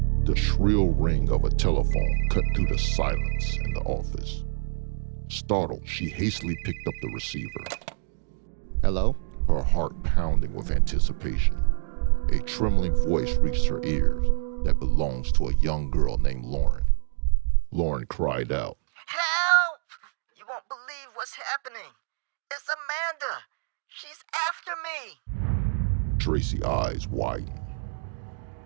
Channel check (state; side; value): silent; left; digital silence